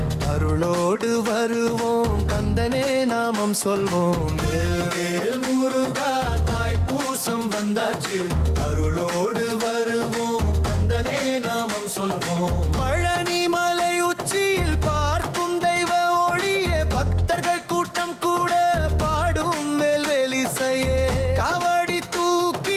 அருளோடு வருவோம், கந்தனே நாமம் சொல்வோம். வேல் முருகா தாய்ப்பூசம் வந்தாச்சு, அருளோடு வருவோம், கந்தனே நாமம் சொல்வோம். பழனி மலை உச்சியில் பார்க்கும் தெய்வ ஒளியே, பக்தர்கள் கூட்டம் கூட பாடும் வேல்வேலிசையே. காவடி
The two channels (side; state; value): both; identical; correlation 1.00